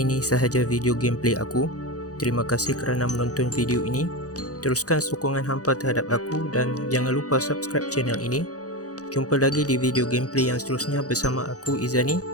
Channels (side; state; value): right; late; 0.67 ms